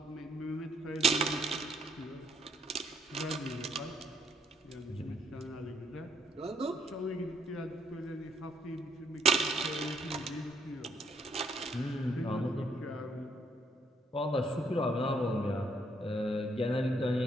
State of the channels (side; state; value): both; normal; correlation 0.69